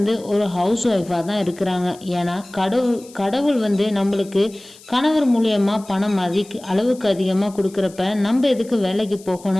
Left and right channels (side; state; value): left; noise; hiss, 22 dB below the sound